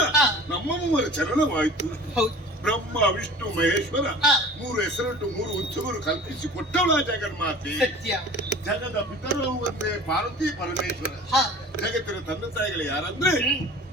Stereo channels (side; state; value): both; normal; correlation 0.42